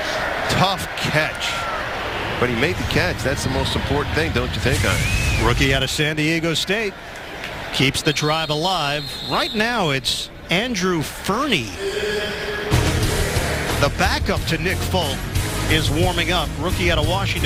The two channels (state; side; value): identical; both; correlation 1.00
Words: Tough catch. But he made the catch. That's the most important thing, don't you think, Ian? Rookie out of San Diego State. Keeps the drive alive. Right now, it's Andrew Fernie. The backup to Nick Folk is warming up. Rookie out of